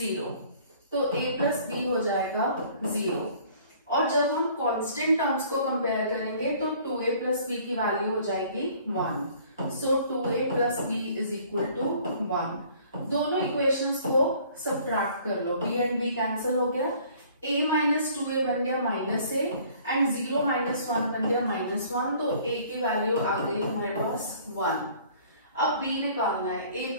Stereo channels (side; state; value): both; inverted; correlation -0.55